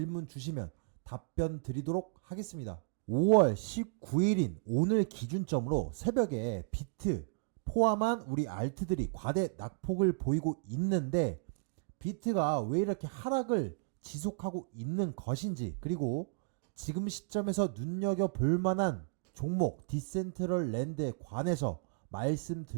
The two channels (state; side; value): quieter; left; 39.2 dB